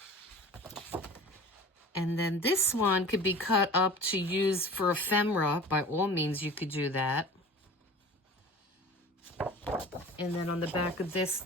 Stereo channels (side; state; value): both; normal; correlation 0.39